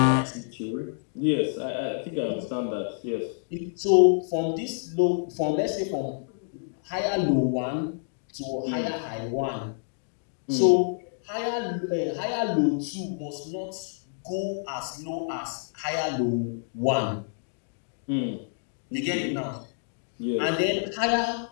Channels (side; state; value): right; silent; digital silence